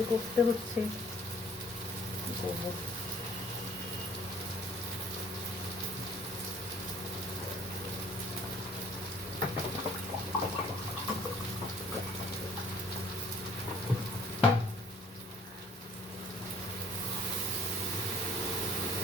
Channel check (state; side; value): normal; both; correlation 0.54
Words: করতে হচ্ছে, করবো।